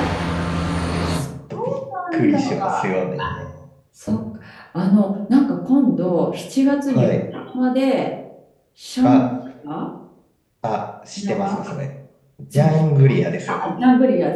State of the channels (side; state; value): both; identical; correlation 1.00